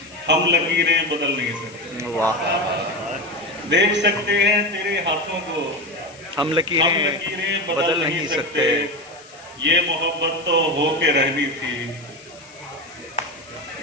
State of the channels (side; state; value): left; noise; hiss, 23 dB below the sound